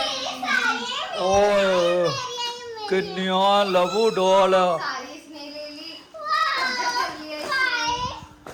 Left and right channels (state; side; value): identical; both; correlation 1.00